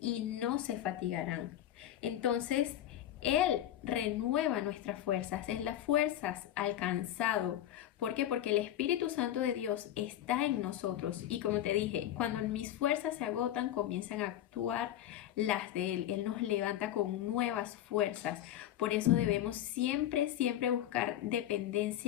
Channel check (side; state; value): right; quieter; 12.0 dB